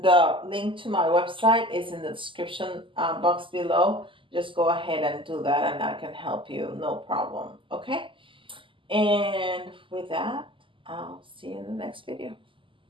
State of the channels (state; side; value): late; left; 0.25 ms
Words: the link to my website is in the description box below. Just go ahead and do that, and I can help you, no problem. Okay, and with that, I'll see you in the next video.